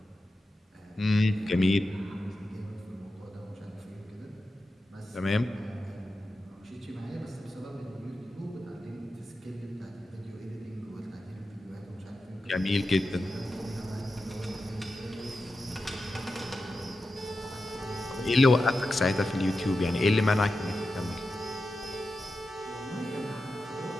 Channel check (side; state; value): both; normal; correlation 0.91